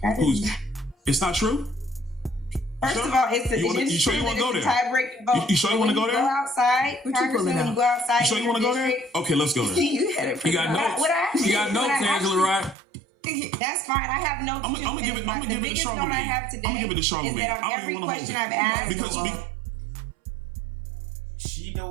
It's not true? First of all, you sure you want to go there? Tie-breaking vote. You sure you want to go there? Go outside, Congressman, when you go outside. You sure you want to go there? Okay, let's go there. You got notes. You got notes, Angela, right? That's fine. I have notes. I'm gonna give it to Charlemagne. I have today I'm gonna give it to Charlemagne. is that on every question I've asked. Because she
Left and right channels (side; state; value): left; drops out; at 12.8 s